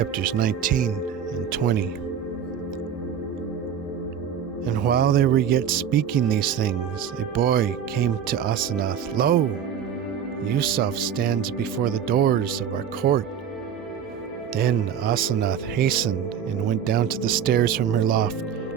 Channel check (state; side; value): quieter; left; 8.2 dB